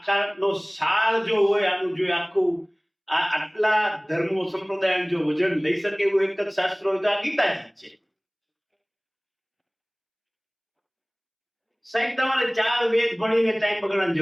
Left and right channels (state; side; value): identical; both; correlation 1.00